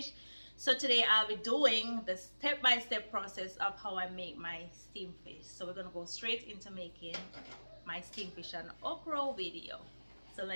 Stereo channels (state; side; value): inverted; both; correlation -1.00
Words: So today I'll be doing the step-by-step process of how I make my steamed fish. So we're gonna go straight into making my steamed fish and okra video. So